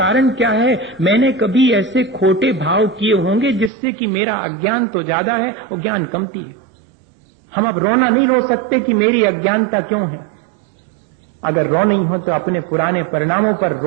क्या है? मैंने कभी ऐसे खोटे भाव किए होंगे जिससे कि मेरा अज्ञान तो ज्यादा है और ज्ञान कमती है। हम अब रोना नहीं रो सकते कि मेरी अज्ञानता क्यों है। अगर रो नहीं हो तो अपने पुराने परिणामों पर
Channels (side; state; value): left; drops out; at 3.7 s